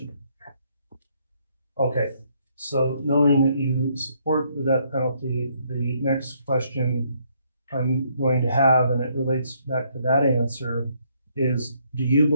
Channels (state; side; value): inverted; both; correlation -0.70